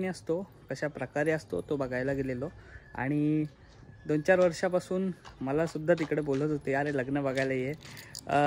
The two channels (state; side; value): identical; both; correlation 1.00